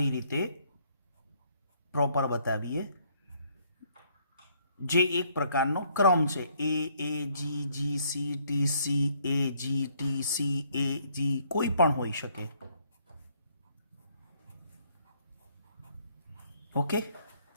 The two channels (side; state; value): both; inverted; correlation -0.66